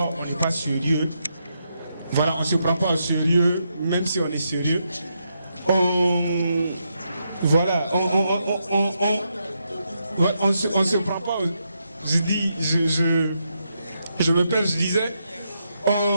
on n'est pas sérieux. Voilà, on ne se prend pas au sérieux, même si on est sérieux. Voilà, on se prend pas. Je me perds, je disais,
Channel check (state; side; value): inverted; both; correlation -0.82